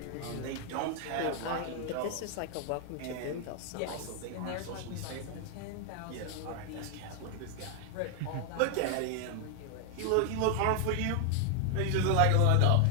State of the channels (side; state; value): both; different; correlation 0.00